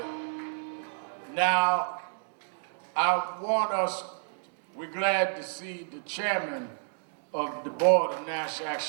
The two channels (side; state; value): left; silent; digital silence